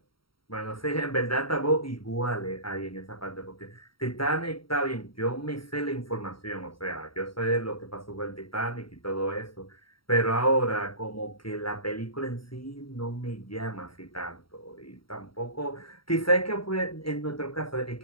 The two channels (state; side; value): late; right; 0.74 ms